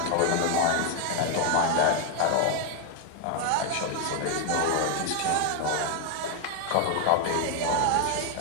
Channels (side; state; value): both; different; correlation 0.01